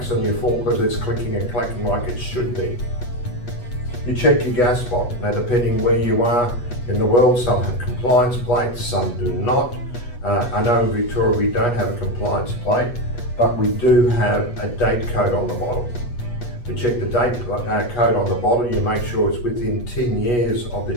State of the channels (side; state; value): right; late; 8.3 ms